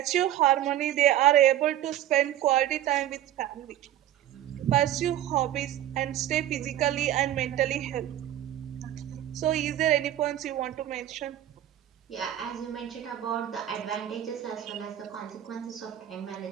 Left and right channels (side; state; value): left; quieter; 12.3 dB